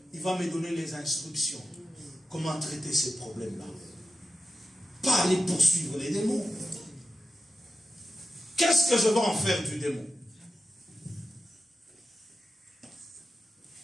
Il va me donner les instructions. Comment traiter ces problèmes-là. Pas aller poursuivre les démons. Qu'est-ce que je vais en faire du démon?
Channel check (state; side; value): normal; both; correlation 0.91